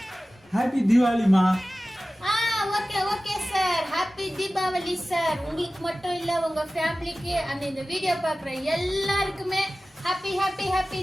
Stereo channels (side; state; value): both; normal; correlation 0.96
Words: ஹாப்பி தீபாவளிமா. Okay sir. Happy Deepavali sir. உங்களுக்கு மட்டும் இல்ல, உங்க ஃபேமிலிக்கு அந்த இந்த வீடியோ பாக்குற எல்லாருக்குமே ஹாப்பி ஹாப்பி ஹாப்பி